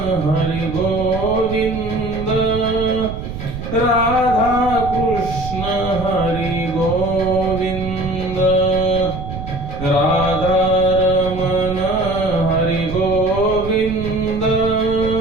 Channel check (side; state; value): right; noise; rumble, 8 dB below the sound